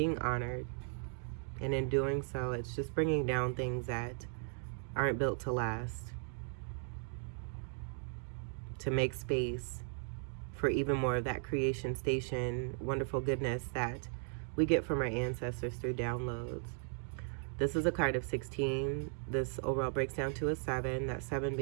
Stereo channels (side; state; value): left; silent; 53 dB below the other